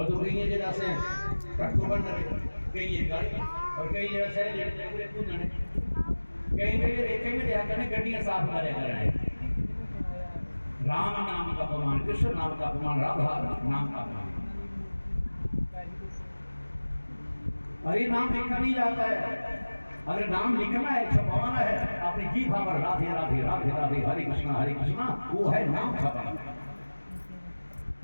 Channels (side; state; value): both; inverted; correlation -1.00